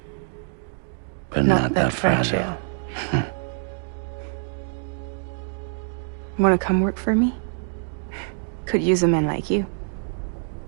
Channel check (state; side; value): silent; left; 57 dB below the other